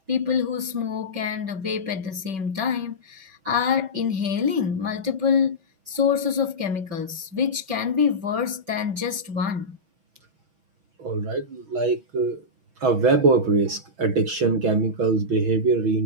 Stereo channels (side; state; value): left; late; 5.3 ms